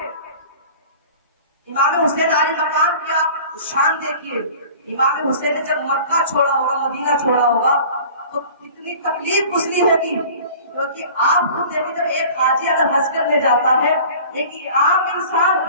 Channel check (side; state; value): both; inverted; correlation -0.43